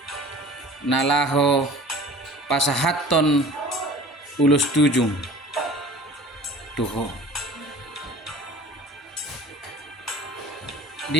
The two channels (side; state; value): both; normal; correlation 0.43